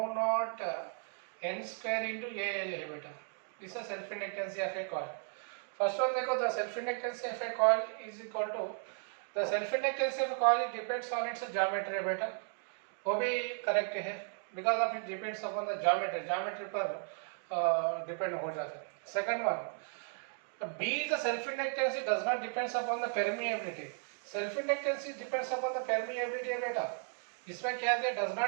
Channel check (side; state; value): left; silent; 54 dB below the other